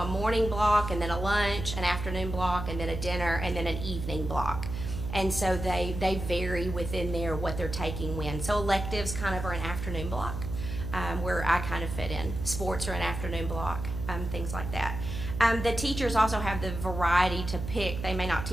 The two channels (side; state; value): right; noise; hum, 6 dB below the sound